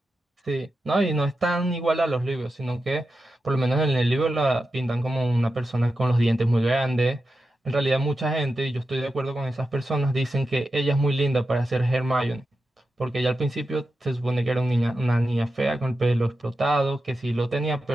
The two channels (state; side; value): normal; both; correlation 0.90